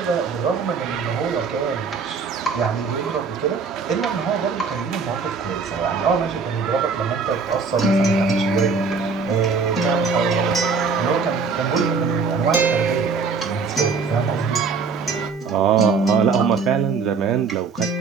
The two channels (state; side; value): quieter; left; 5.0 dB